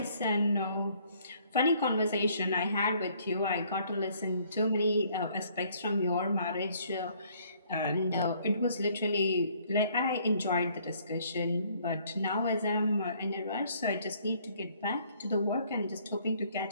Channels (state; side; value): inverted; both; correlation -0.62